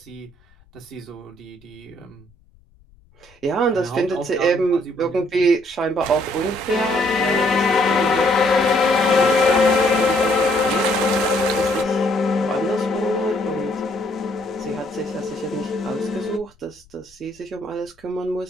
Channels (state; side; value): noise; left; rumble, 30 dB below the sound